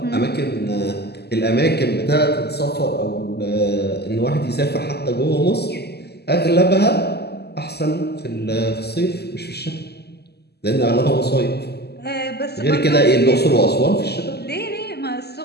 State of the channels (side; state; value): right; late; 0.47 ms